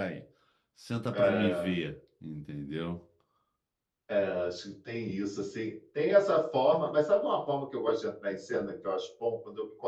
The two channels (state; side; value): identical; both; correlation 1.00